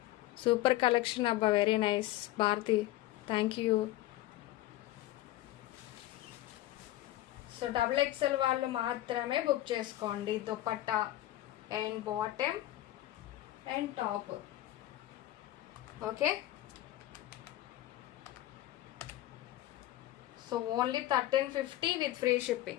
super collection అబ్బా, very nice Bharathi, thank you. So double XL వాళ్ళు మాత్రమే బుక్ చేసుకోండి. Dupatta and bottom and top. Okay. So only 1350 with free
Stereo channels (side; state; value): right; quieter; 15.3 dB